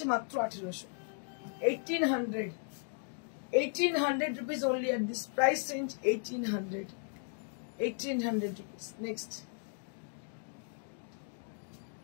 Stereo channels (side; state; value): right; silent; 54 dB below the other